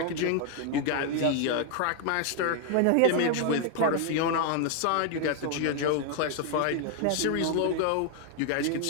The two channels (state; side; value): different; both; correlation 0.00